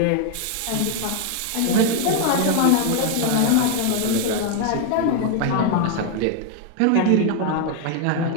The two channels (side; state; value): both; different; correlation 0.00